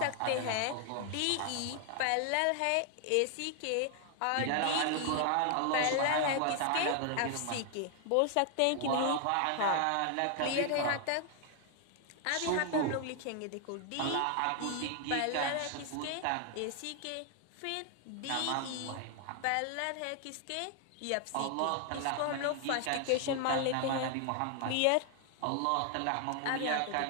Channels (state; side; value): different; both; correlation 0.00